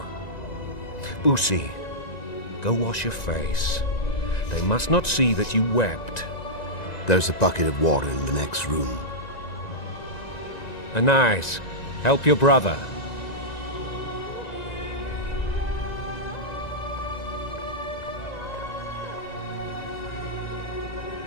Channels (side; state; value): right; late; 1.9 ms